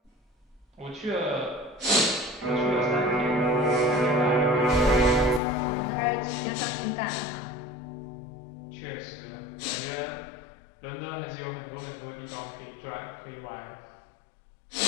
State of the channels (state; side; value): drops out; right; at 5.4 s